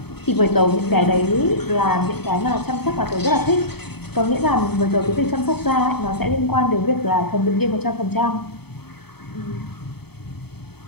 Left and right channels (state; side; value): late; right; 0.97 ms